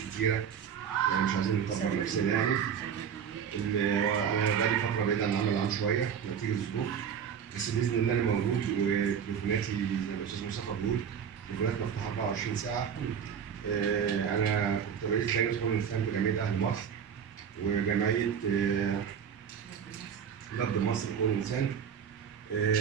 يعني مش عايزين نكبر نفسنا يعني. انا بقالي فتره بعيد عن العمل العام شويه نتيجه الظروف، بس باذن الله انا موجود، وتليفوناتي زي ما الاستاذ مصطفى بيقول تليفونات مفتوحه 24 ساعه. انا كنت رئيس لجنه حقوق الانسان بجمعيه اهل مصر وجمعيه نبض مصر حقوق الانسان.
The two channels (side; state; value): left; quieter; 7.8 dB